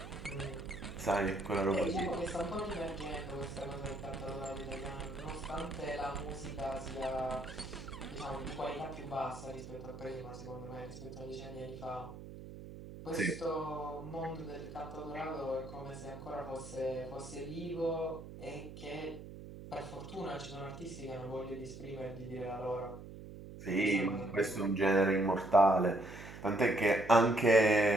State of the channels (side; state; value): right; noise; hum, 13 dB below the sound